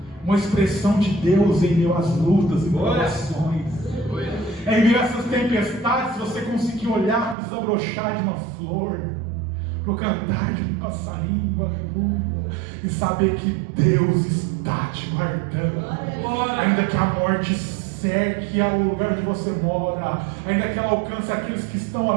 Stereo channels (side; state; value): left; drops out; at 7.4 s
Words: uma expressão de Deus em meio às lutas e provações. Em meio a essas tempestades, você conseguir olhar e desabrochar de uma flor, para o cantar de um passarinho, aleluia, e saber que Deus está te guardando. Ainda que a morte cerque ao lugar onde você mora, ainda que ela alcance aqueles que estão